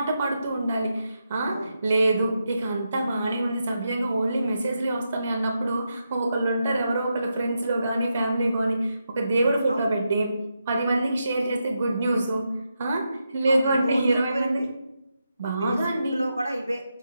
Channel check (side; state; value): both; inverted; correlation -0.85